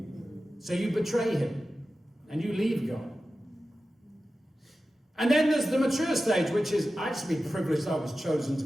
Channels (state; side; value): normal; both; correlation 0.94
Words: So you betray him, and you leave God. And then there's the mature stage, which is, I just be privileged I was chosen to